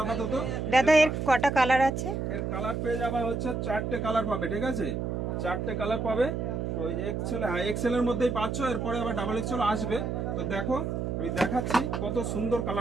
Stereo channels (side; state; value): right; noise; hum, 2 dB below the sound